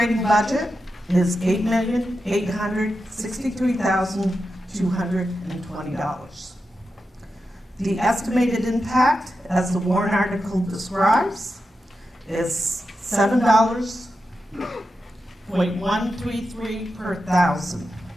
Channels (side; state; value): both; normal; correlation 0.89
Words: budget is $8,863,220. The estimated impact, as the warrant article describes, is $7.133 per thousand.